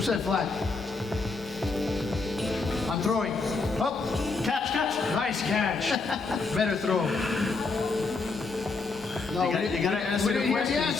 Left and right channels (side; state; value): right; quieter; 4.0 dB